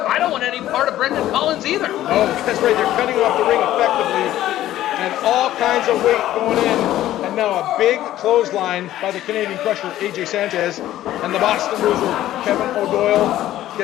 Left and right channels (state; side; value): quieter; right; 13.6 dB